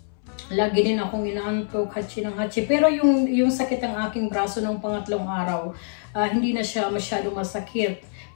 Lagi din akong inaantok, hatsi ng hatsi. Pero yung sakit ng aking braso ng pangatlong araw, hindi na siya masyado masakit.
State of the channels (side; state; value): right; silent; 62 dB below the other